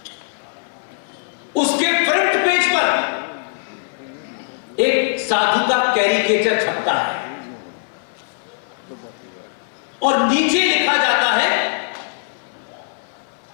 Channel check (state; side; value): silent; right; 59 dB below the other